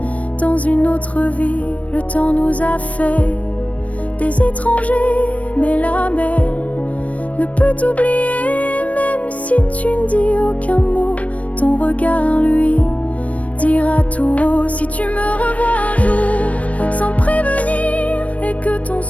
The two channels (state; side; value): late; right; 0.066 ms